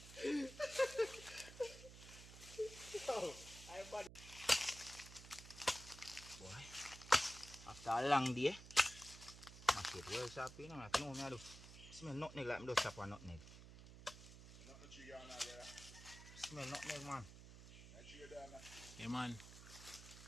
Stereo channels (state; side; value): noise; right; hum, 15 dB below the sound